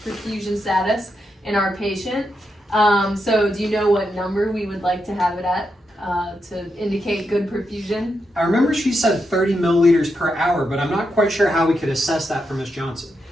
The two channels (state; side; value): normal; both; correlation 0.84